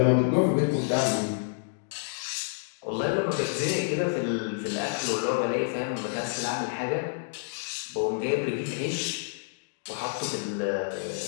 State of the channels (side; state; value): right; silent; digital silence